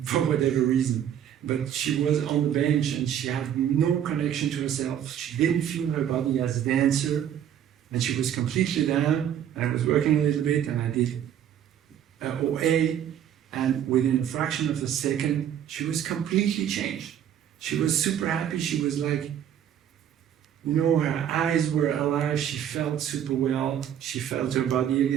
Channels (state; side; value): quieter; left; 9.9 dB